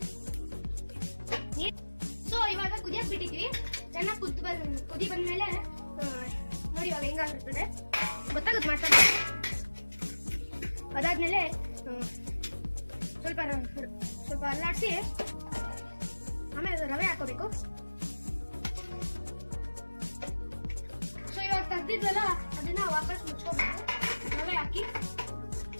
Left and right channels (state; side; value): inverted; both; correlation -1.00